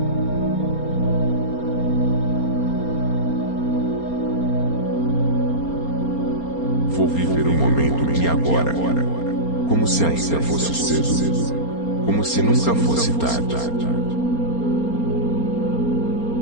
Vou viver o momento de agora, como se ainda fosse cedo, como se nunca fosse tarde.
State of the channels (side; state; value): right; late; 4.3 ms